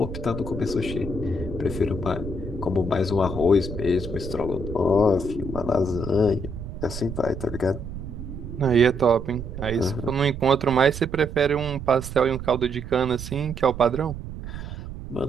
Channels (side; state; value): right; noise; rumble, 9 dB below the sound